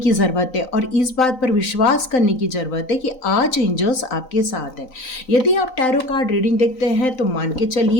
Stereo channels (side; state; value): right; late; 3.9 ms